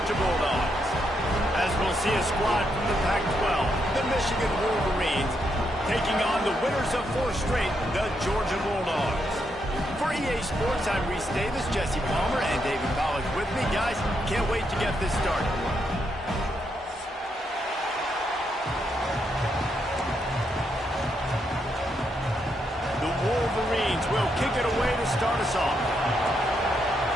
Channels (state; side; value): normal; both; correlation 0.79